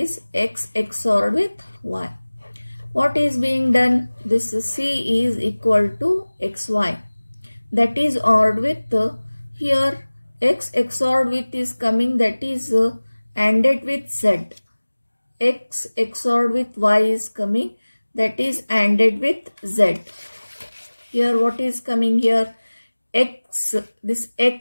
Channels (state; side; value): inverted; both; correlation -1.00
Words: x XOR with y. What is being done? This c is equal to xy. That is ORed with, here x XOR with is coming, that is ANDed with z. X XOR with y is coming, that is ANDed with z. Here what is coming here? X, this